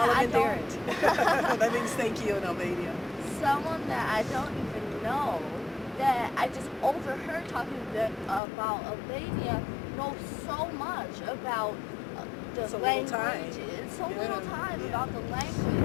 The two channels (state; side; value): drops out; right; at 8.4 s